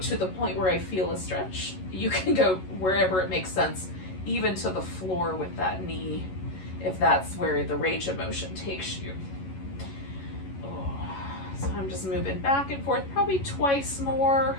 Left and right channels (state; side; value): late; right; 11 ms